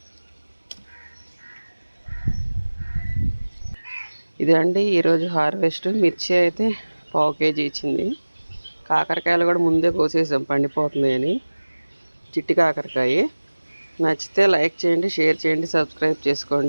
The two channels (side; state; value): both; inverted; correlation -1.00